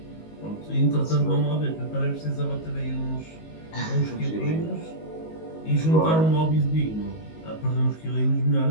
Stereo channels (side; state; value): right; late; 19 ms